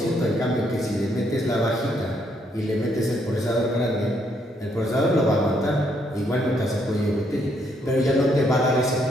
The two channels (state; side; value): normal; both; correlation 0.73